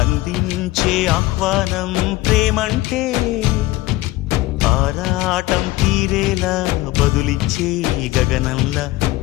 అందించే ఆహ్వానం ప్రేమంటే ఆరాటం తీరేలా బదులిచ్చే గగనంలా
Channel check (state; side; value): quieter; right; 18.2 dB